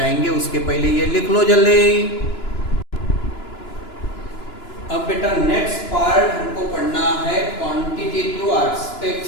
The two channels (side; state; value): right; late; 2.9 ms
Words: उसके पहले ये लिख लो जल्दी। अब बेटा नेक्स्ट पार्ट हमको पढ़ना है क्वांटिटेटिव